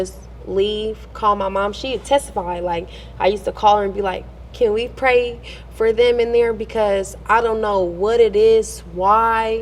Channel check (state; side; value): identical; both; correlation 1.00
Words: leave, call my mom. She'd testify. Like, I used to call her and be like, can we pray for them in there? Because I don't know what it is, why